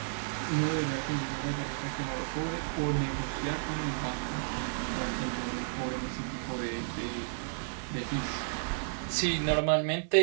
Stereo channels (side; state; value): left; silent; digital silence